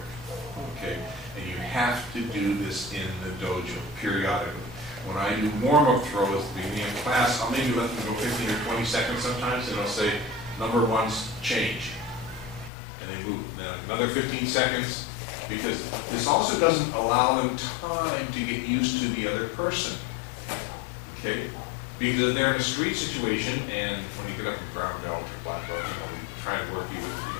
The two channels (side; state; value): right; drops out; at 12.7 s